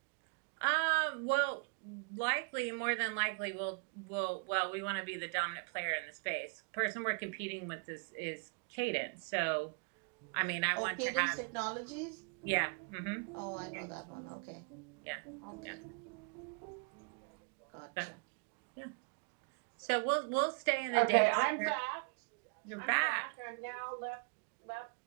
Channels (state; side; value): quieter; left; 34.8 dB